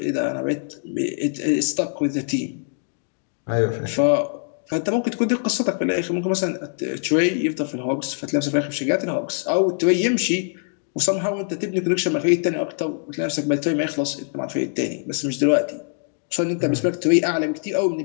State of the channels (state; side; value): silent; right; 62 dB below the other